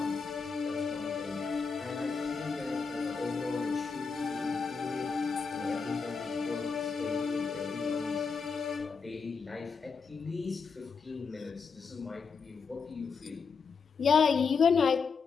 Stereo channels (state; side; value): quieter; right; 5.4 dB